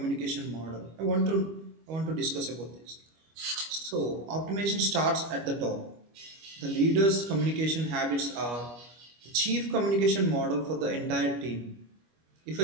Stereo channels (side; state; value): left; late; 25 ms